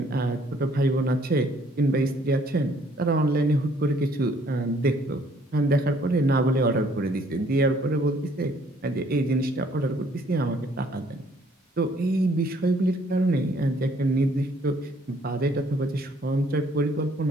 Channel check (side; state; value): both; normal; correlation 0.62